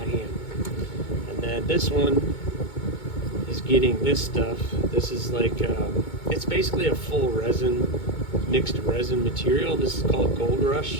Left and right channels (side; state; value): right; late; 2.2 ms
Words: hand. And then this one is getting this stuff. This is like, it's basically a full resin, mixed resin material. This is called Gold